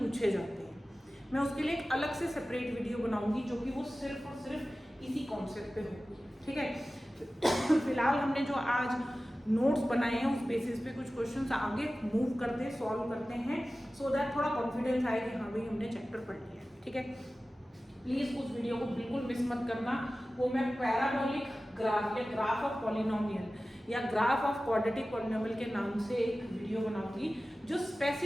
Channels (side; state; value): both; normal; correlation 0.96